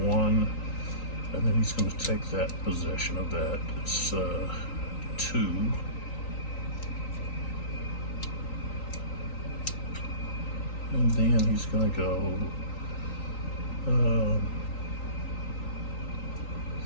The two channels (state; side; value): late; right; 3.9 ms